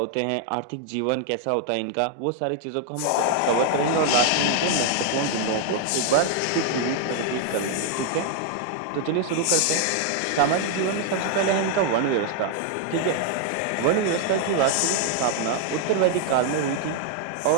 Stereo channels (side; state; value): both; different; correlation 0.00